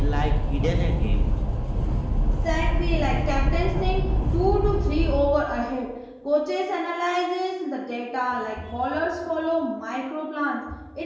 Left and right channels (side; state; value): both; identical; correlation 1.00